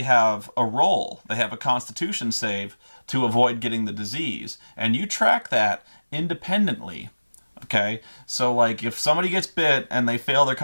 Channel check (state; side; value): inverted; both; correlation -1.00